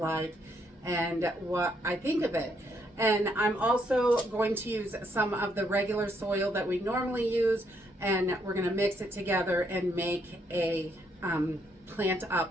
and what I think of it. And I'm also going to use some of the regular soil that we normally use, and we're gonna mix it together and make a plant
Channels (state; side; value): normal; both; correlation 0.73